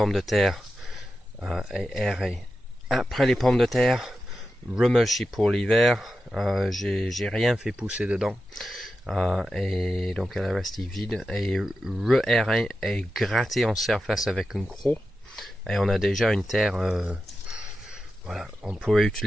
de terre et aéré après les pommes de terre, remulché pour l'hiver. J'ai rien fait pousser dedans et donc elle est restée vide et re-aéré et gratté en surface avec une croc et on a déjà une terre. Voilà, on pourrait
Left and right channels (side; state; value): both; normal; correlation 0.90